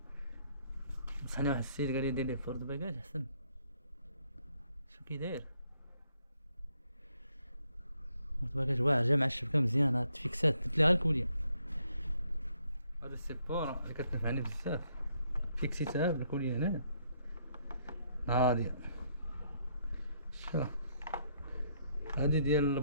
نصحني واحد السيد قال لي دير ليه بورت باكاج احسن. شو كي داير بورت باكاج واعر جا مع الشبكه مزيانه تفيكسات درت ليها الكوليه. هذا السيبور اللي كتنفعني بزاف فيكسيتها بالكوليه هنا هادي. شوف هادي ديال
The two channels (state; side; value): inverted; both; correlation -0.72